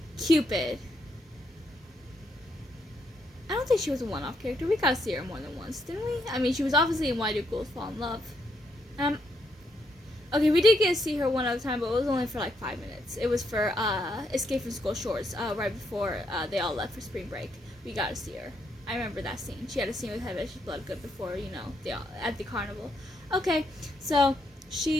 Cupid. I don't think she was a one-off character. We got to see her more than once, didn't we? I mean, she was obviously in Why Do Ghouls Fall in Love. Okay, we did get to see her one other time, but it was only for like 5 minutes. It was for Escape from School Shorts, right before they all left for spring break. We got to see her. I remember that scene. She had a scene with Heather Bloodgood before, at the carnival. Okay, so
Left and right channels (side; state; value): both; normal; correlation 0.76